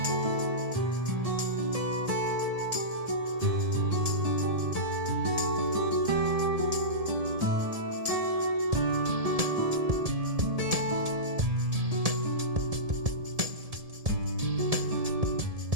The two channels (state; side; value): late; left; 1.7 ms